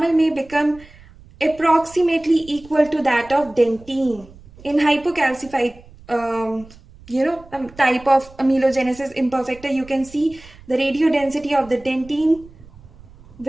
may become approximately equal to that of dentine. In hypocalcified type of amelogenesis imperfecta, you can see the radio density of the dentine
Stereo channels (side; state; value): right; noise; rumble, 22 dB below the sound